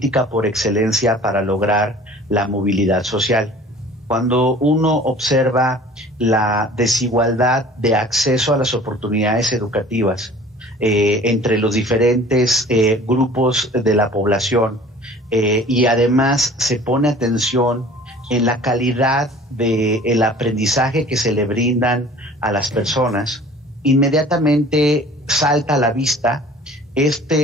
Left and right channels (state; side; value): normal; both; correlation 0.46